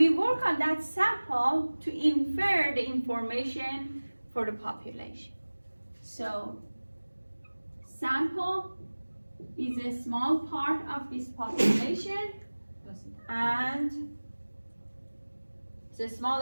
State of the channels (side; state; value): both; inverted; correlation -1.00